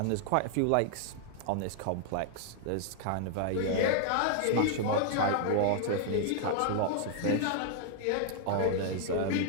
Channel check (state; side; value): different; both; correlation -0.01